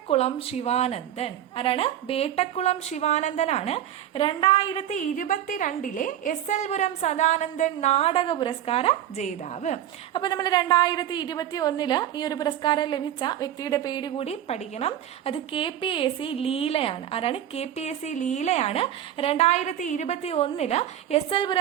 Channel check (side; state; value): left; quieter; 11.2 dB